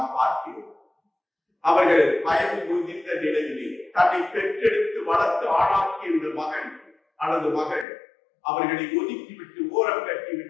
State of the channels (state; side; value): drops out; right; at 7.9 s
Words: பார்க்கிறோம். அவர்கள் வயது முதிர்ந்த நிலையிலே தன்னை பெற்றெடுத்து வளர்த்து ஆளாக்கிய இந்த மகன் அல்லது மகள் அவர்களை ஒதுக்கிவிட்டு ஓரம்